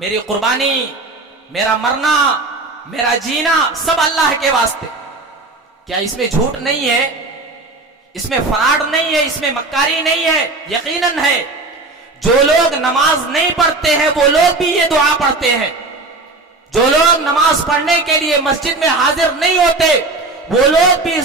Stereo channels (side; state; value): left; quieter; 3.3 dB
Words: قربانی، میرا مرنا، میرا جینا سب اللہ کے واسطے۔ کیا اس میں جھوٹ نہیں ہے؟ اس میں فراڈ نہیں ہے؟ اس میں مکاری نہیں ہے؟ یقیناً ہے۔ جو لوگ نماز نہیں پڑھتے ہیں وہ لوگ بھی یہ دعا پڑھتے ہیں، جو لوگ نماز پڑھنے کے لیے مسجد میں حاضر نہیں ہوتے وہ لوگ بھی